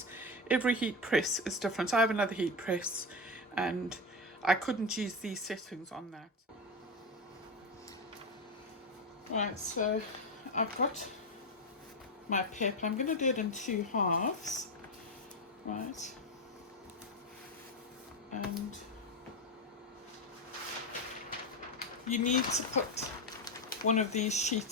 Every heat press is different. I have another heat press and I couldn't use these settings on that. Right, so I've got my paper. I'm going to do it in 2 halves, right? And you need to put one of these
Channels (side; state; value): both; normal; correlation 0.14